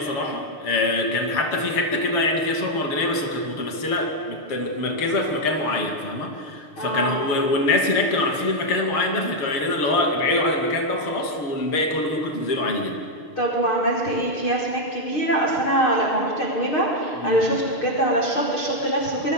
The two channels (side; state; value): right; late; 6.6 ms